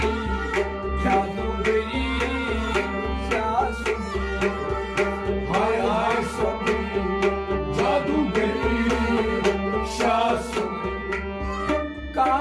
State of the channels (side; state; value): both; identical; correlation 1.00